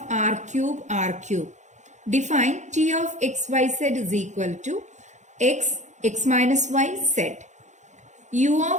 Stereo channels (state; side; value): late; left; 0.34 ms